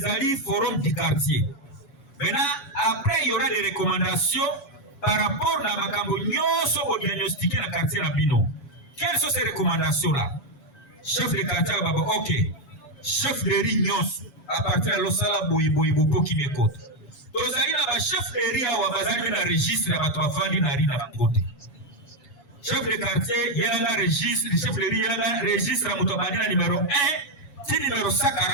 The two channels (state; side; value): late; right; 7.1 ms